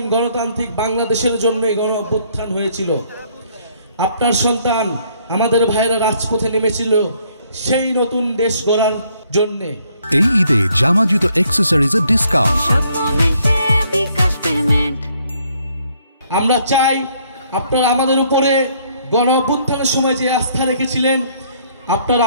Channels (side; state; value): both; inverted; correlation -0.66